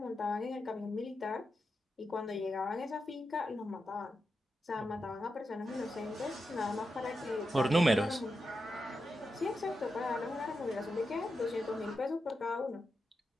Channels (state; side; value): normal; both; correlation 0.88